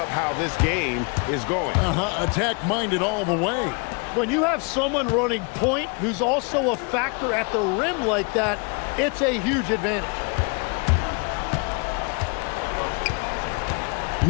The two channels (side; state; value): right; quieter; 33.9 dB